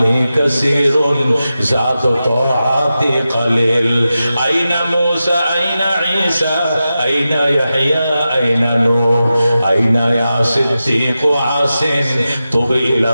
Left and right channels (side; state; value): both; inverted; correlation -0.92